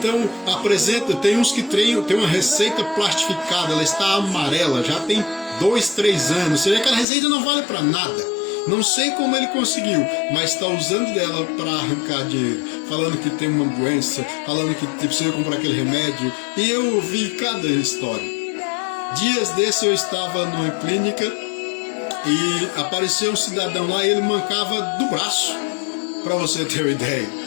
tem uns que tem uma receita plastificada, ela está amarela, já tem 2, 3 anos, você vê que aquela receita não vale para nada. Não sei como ele conseguiu, mas está usando dela para arrancar dinheiro, falando que tem uma doença, falando que precisa comprar aquele remédio, e eu ouvi cada história. Dias desses eu estava numa clínica, e apareceu um cidadão lá e ele mancava do braço, para você ter uma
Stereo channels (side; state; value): right; drops out; at 7.1 s